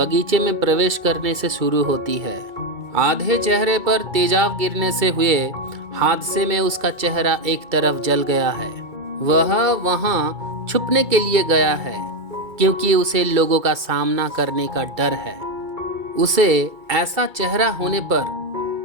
में प्रवेश करने से शुरू होती है। आधे चेहरे पर तेजाब गिरने से हुए हादसे में उसका चेहरा एक तरफ जल गया है। वह वहां छुपने के लिए गया है क्योंकि उसे लोगों का सामना करने का डर है। उसे ऐसा चेहरा होने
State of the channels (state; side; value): late; left; 2.3 ms